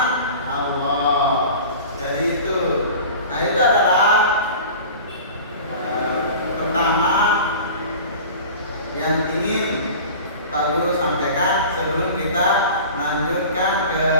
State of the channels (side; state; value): both; inverted; correlation -0.38